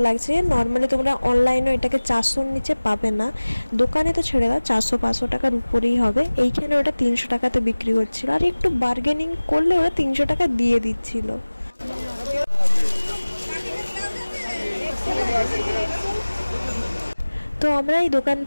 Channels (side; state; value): both; inverted; correlation -1.00